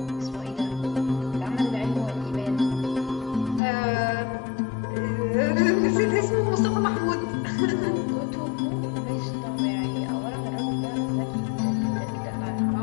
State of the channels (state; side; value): drops out; right; at 3.6 s